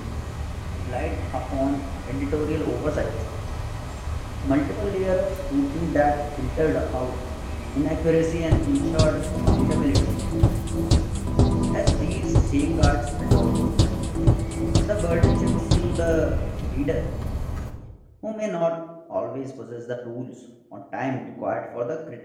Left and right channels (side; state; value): both; identical; correlation 1.00